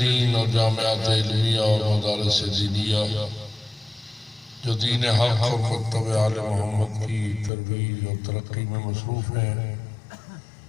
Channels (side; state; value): right; drops out; at 7.5 s